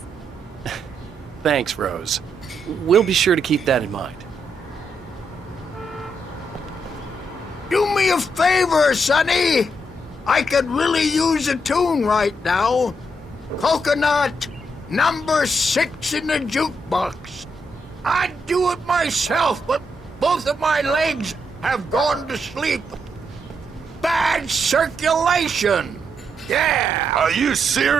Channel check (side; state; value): both; normal; correlation 0.79